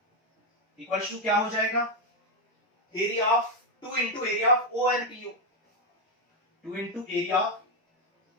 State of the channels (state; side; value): normal; both; correlation 0.04